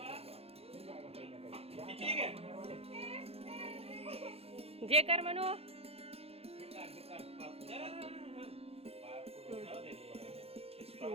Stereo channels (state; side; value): late; left; 0.29 ms